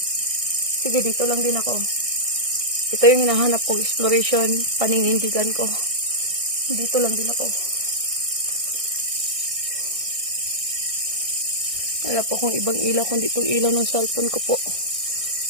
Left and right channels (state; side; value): late; left; 1.6 ms